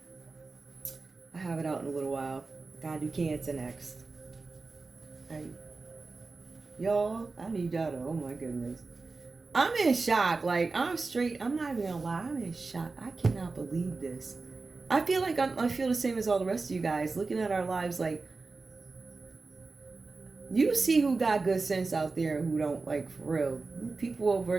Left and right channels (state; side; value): quieter; left; 3.9 dB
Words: I have it out in a little while. Gotta do Cancer next. Y'all, I need y'all to, oh my goodness. I'm in shock. Like, I'm not even gonna lie. I'm in shock. I cannot believe this. I feel like I feel the same as all the rest of you guys. Looking at our lives, like, you see who got good sense out there and who don't, like, for real. People over